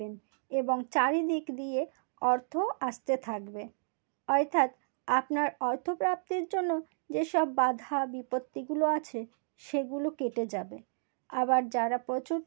এবং চারিদিক দিয়ে অর্থ আসতে থাকবে। অর্থাৎ আপনার অর্থপ্রাপ্তির জন্য যেসব বাধা বিপত্তিগুলো আছে সেগুলো কেটে যাবে। আবার যারা প্রচুর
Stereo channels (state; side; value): silent; left; digital silence